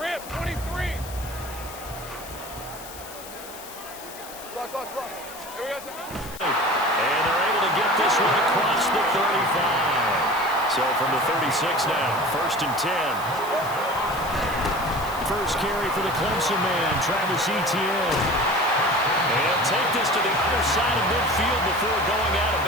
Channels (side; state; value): left; noise; hiss, 15 dB below the sound